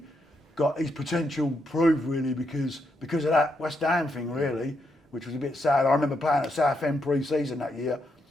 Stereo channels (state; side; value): normal; both; correlation 0.80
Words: got his potential proved, really, because of that West Ham thing, really, which was a bit sad. I remember playing at Southend pre-season that year.